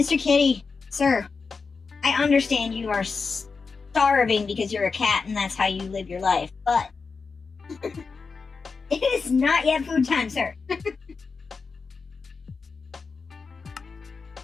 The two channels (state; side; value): quieter; right; 4.8 dB